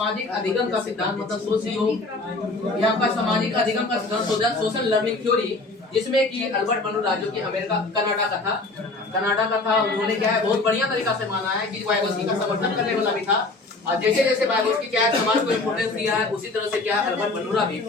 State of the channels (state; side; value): quieter; right; 3.3 dB